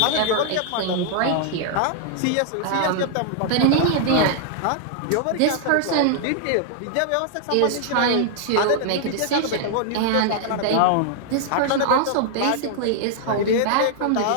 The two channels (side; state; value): both; different; correlation 0.00